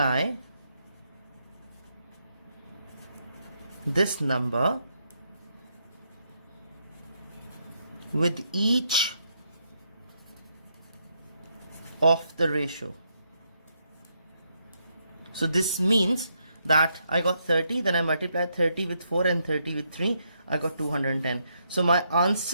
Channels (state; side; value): inverted; both; correlation -0.77